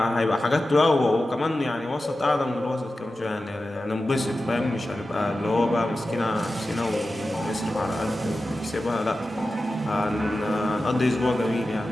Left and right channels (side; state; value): both; normal; correlation 0.93